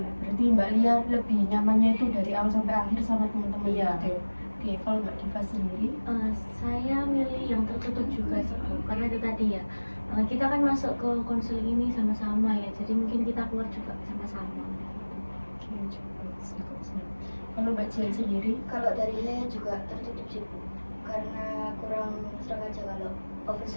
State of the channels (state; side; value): inverted; both; correlation -1.00